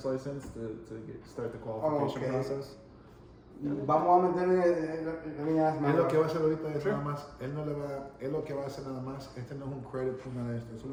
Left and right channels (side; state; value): both; identical; correlation 1.00